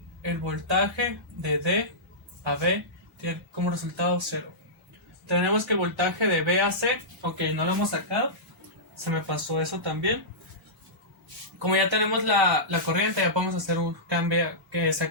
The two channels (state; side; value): normal; both; correlation -0.16